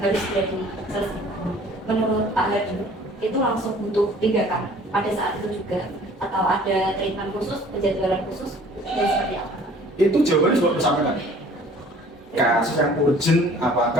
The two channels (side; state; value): both; normal; correlation 0.52